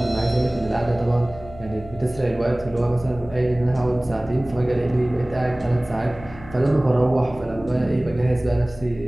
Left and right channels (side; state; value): left; noise; hum, 18 dB below the sound